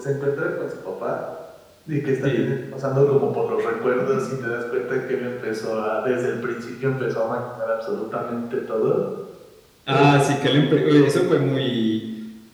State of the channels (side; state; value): both; identical; correlation 1.00